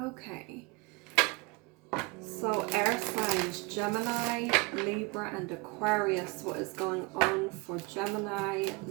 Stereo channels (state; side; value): quieter; left; 25.9 dB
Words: so air signs, Gemini, Libra and Aquarius. What is going on for Gemini,